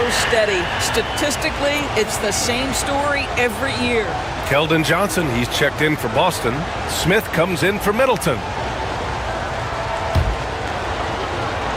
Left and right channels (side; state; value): both; identical; correlation 1.00